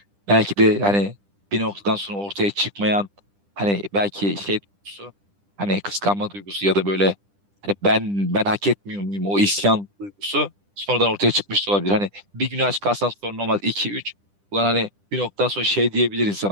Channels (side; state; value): left; late; 10 ms